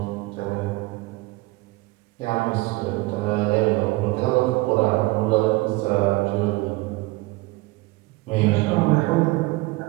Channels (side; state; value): left; quieter; 22.1 dB